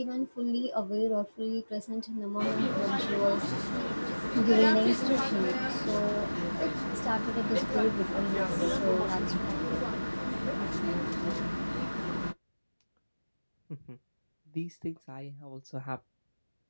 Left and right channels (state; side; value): inverted; both; correlation -1.00